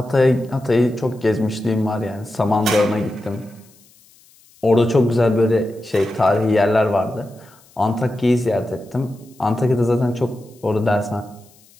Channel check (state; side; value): noise; left; hiss, 29 dB below the sound